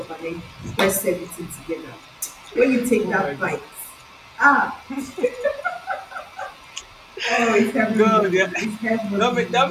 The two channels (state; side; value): identical; both; correlation 1.00